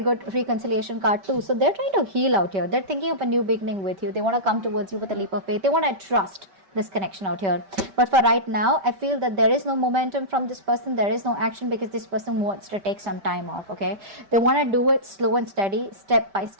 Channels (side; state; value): left; late; 5.2 ms